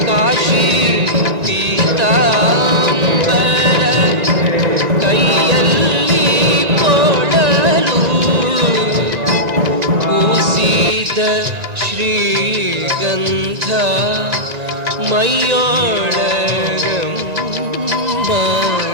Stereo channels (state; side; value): late; left; 1.9 ms